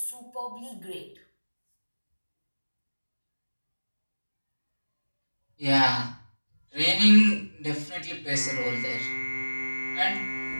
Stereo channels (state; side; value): inverted; both; correlation -1.00